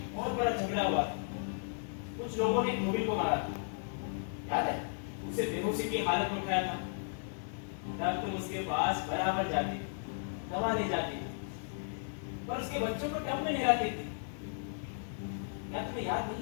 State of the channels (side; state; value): right; silent; digital silence